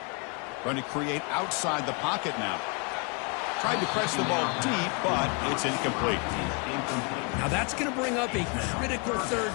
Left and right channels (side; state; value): right; quieter; 33.9 dB